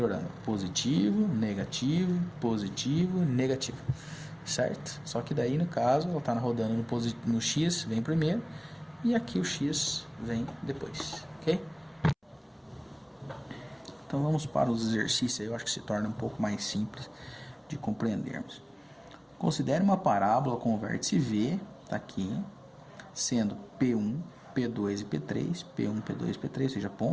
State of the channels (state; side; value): identical; both; correlation 1.00